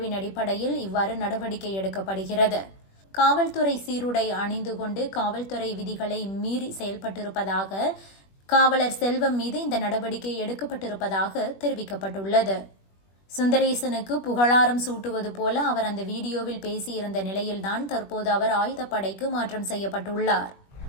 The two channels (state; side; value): late; right; 21 ms